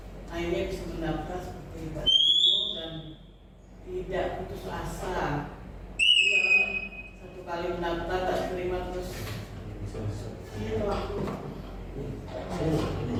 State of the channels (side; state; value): both; identical; correlation 1.00